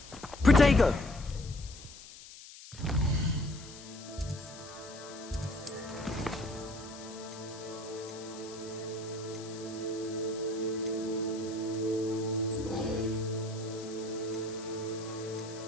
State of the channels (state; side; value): noise; left; hiss, 16 dB below the sound